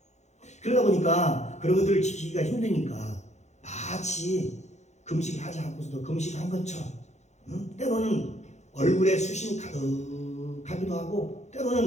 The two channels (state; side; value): late; right; 0.33 ms